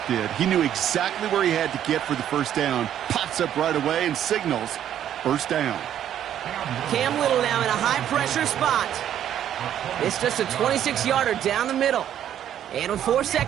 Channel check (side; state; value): left; quieter; 10.5 dB